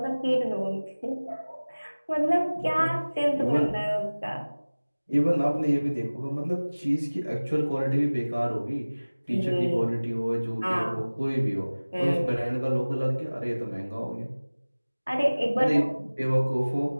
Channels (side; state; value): both; inverted; correlation -1.00